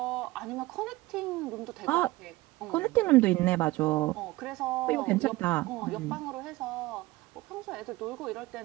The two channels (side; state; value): left; quieter; 19.6 dB